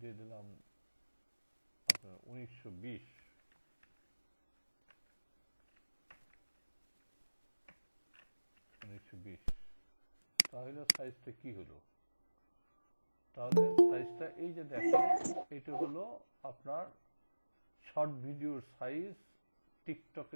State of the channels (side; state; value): both; inverted; correlation -1.00